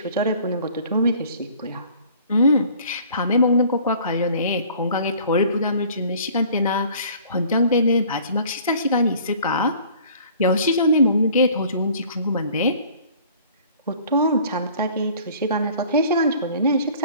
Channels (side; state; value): both; inverted; correlation -0.51